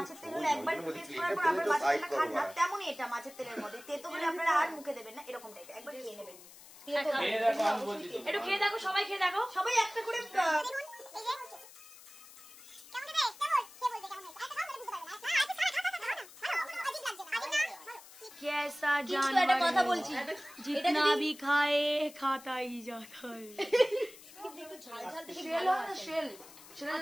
তেল হলে একবার টেস্ট করার পর আপনার মাছের তেলটা খান না, তেমনই এটা মাছের তেলের মধ্যে তেতো হলে আপনারা আর মুখে দেবেন না, এরকম টাইপের একবার খেয়ে নেবেন। একটু খেয়ে দেখো, সবাই খেয়ে দেখো, সবাই একটা করে कैसा কিন্তু একটা কথা বলছি, जितना भी खाए खाता ही जाता है। একটু ঝাল ঝাল থেকে শেল হয় না, শেল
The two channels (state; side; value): noise; left; hiss, 19 dB below the sound